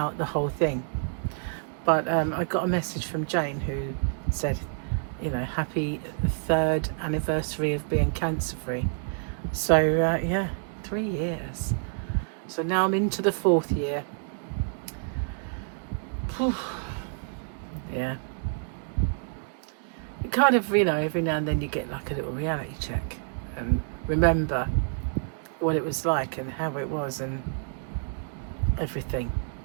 the whole thing. But I got a message from Jane who said, you know, happy 3rd anniversary of being cancer free. So yeah, 3 years. So now I'm into the 4th year. Whew. Yeah. It kind of, you know, every now and then you get like a little reality check and remember what it was like and how it was and everything.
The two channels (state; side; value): silent; left; 59 dB below the other